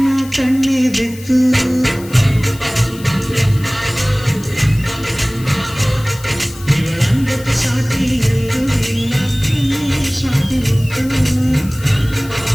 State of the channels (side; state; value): left; noise; hiss, 18 dB below the sound